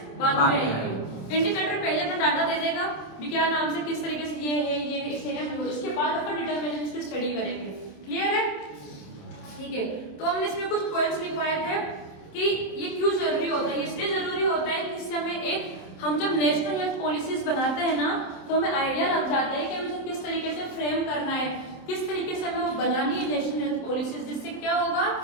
बाद में आएंगे। इंडिकेटर पहले अपना डाटा दे देगा भी क्या नाम से किस तरीके से ये है, ये इस एरिया में, उसके बाद अपन डिटरमिनेंट्स की स्टडी करेंगे। क्लियर है, ठीक है। तो हमने इसमें कुछ पॉइंट्स लिखवाए थे कि ये क्यों जरूरी होता है। इसलिए जरूरी होता है कि इससे हमें एक, हम जब नेशनल हेल्थ पॉलिसीज बनाते हैं ना, तो हमें आइडिया लग जाता है कि हमें किस तरीके से फ्रेम करना है, किस तरीके से हमें वो बनानी है नेशनल हेल्थ पॉलिसीज, जिससे क्या होगा,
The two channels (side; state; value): right; late; 27 ms